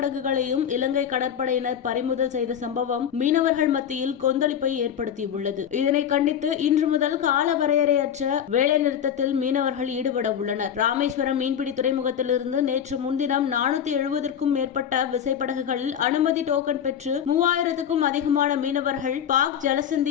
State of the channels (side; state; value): right; quieter; 8.9 dB